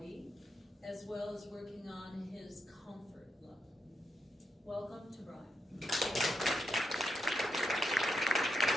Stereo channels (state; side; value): normal; both; correlation 0.83